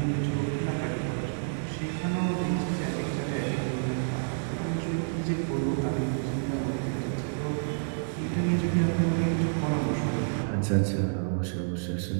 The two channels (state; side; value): silent; left; 59 dB below the other